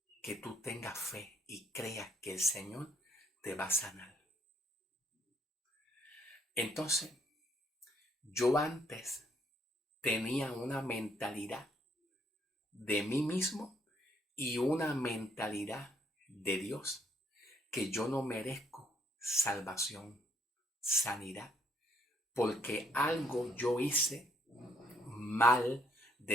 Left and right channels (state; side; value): normal; both; correlation 0.70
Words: que tú tengas fe y creas que el Señor te va a sanar. Entonces, yo antes tenía una mentalidad de mí mismo y una mentalidad de Dios, que yo no merezco salvación, sanidad, porque algo yo hice mal